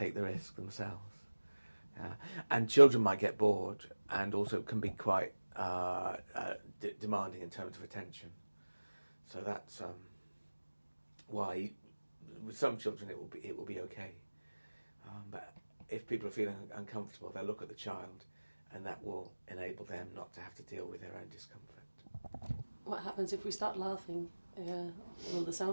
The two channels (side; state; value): both; inverted; correlation -1.00